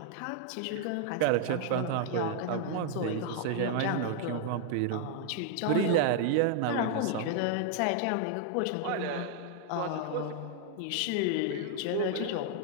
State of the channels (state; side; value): different; both; correlation 0.00